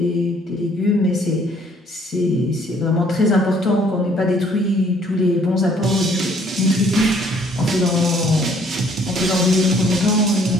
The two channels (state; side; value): normal; both; correlation 0.61